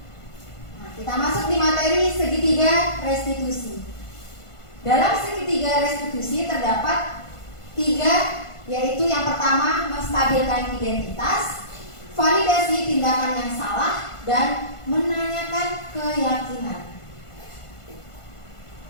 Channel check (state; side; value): late; right; 1.5 ms